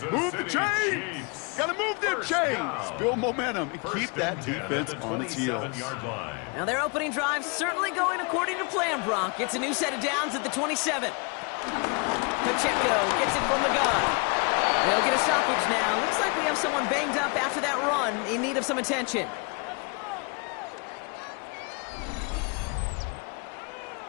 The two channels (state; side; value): quieter; right; 32.6 dB